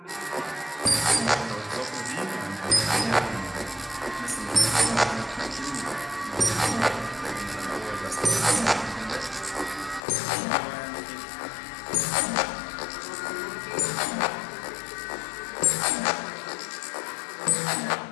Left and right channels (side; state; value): right; drops out; at 10.0 s